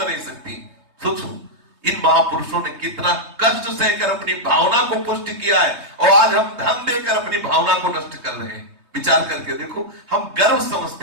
नहीं सकती। सोचो इन महापुरुषों ने कितना कष्ट सहकर अपनी भावना को पुष्ट किया है, और आज हम धन देकर अपनी भावना को नष्ट कर रहे हैं। विचार करके देखो, हम गर्व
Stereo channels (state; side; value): late; left; 3.2 ms